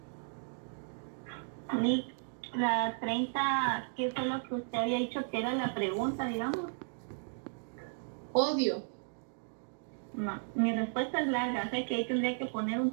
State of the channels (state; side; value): silent; left; digital silence